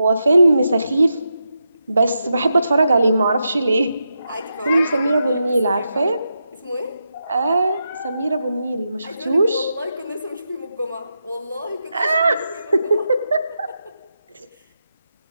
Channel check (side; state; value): both; inverted; correlation -0.86